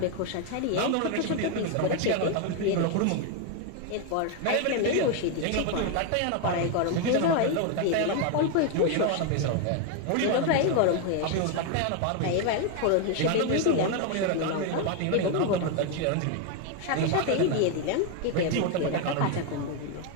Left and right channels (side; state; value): both; different; correlation 0.01